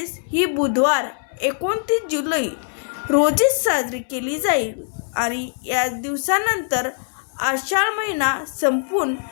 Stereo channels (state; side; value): silent; right; 64 dB below the other